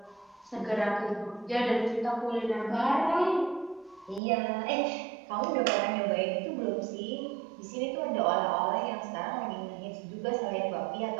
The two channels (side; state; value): left; drops out; at 4.2 s